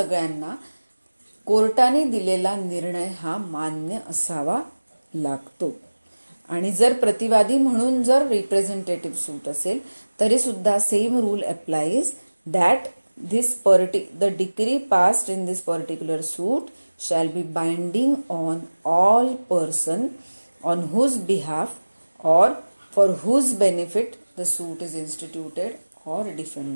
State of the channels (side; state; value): both; inverted; correlation -1.00